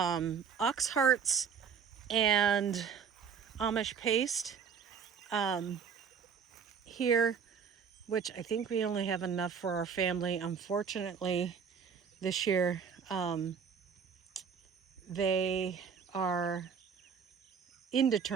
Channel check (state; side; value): quieter; left; 6.6 dB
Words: hearts and Amish paste here, which I think we only have enough for our family. Unfortunately, this year they are